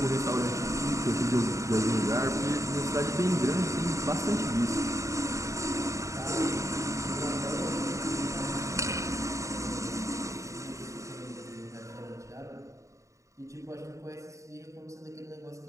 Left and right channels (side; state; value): left; late; 0.15 ms